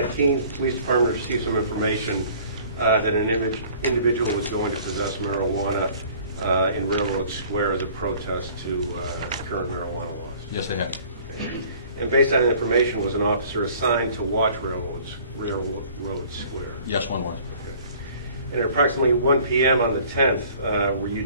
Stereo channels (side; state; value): both; inverted; correlation -0.52